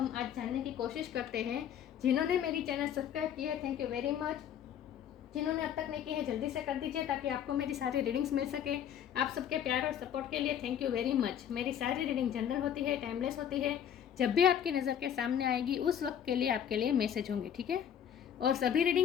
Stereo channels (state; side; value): quieter; right; 9.3 dB